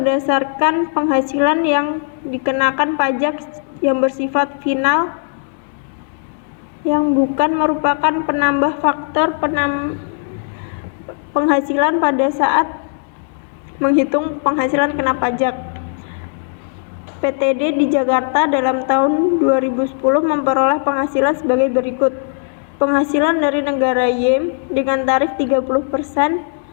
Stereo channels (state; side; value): silent; right; digital silence